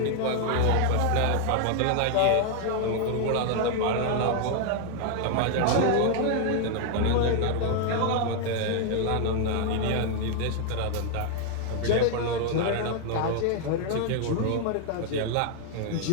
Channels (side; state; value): both; different; correlation 0.00